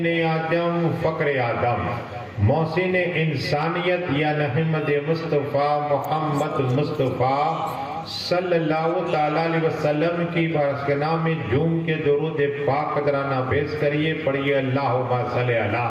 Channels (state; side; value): identical; both; correlation 1.00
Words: اعظم، فقر آدم، محسن انسانیت یا احمد مصطفیٰ محمد مصطفیٰ صلی اللہ تعالیٰ علیہ وسلم کی بارگاہ میں جھوم کے درود پاک قدرانہ پیش کریے، پڑھیے اللہم صلی علی